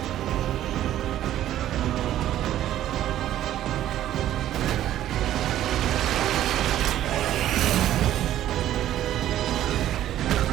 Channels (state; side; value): quieter; left; 12.5 dB